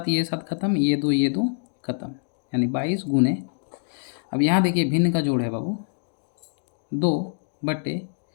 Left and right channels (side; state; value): right; silent; digital silence